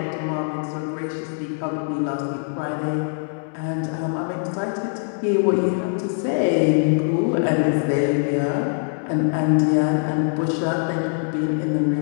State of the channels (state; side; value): silent; right; 64 dB below the other